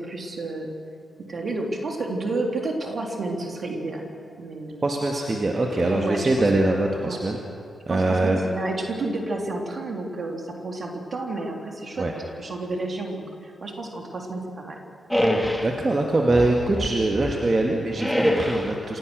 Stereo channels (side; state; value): both; normal; correlation 0.90